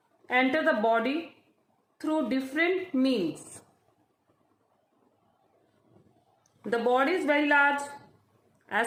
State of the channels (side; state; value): both; identical; correlation 1.00